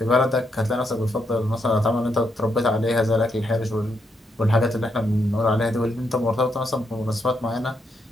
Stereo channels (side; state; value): both; normal; correlation 0.79